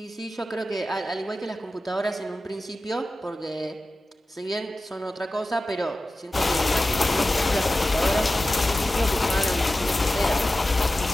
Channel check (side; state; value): both; normal; correlation 0.94